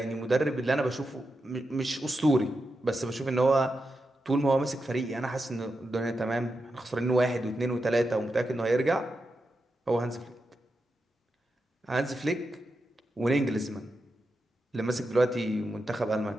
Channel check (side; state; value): both; normal; correlation 0.88